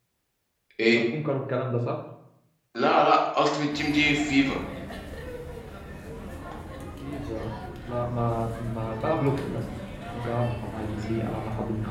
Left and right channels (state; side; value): identical; both; correlation 1.00